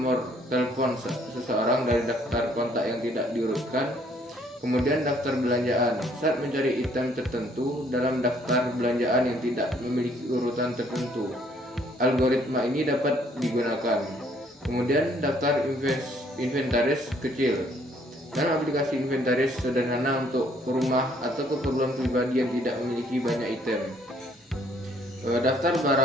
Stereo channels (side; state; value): both; normal; correlation 0.64